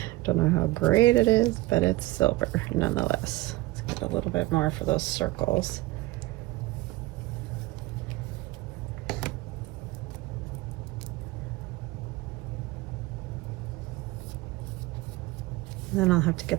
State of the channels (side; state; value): left; quieter; 19.0 dB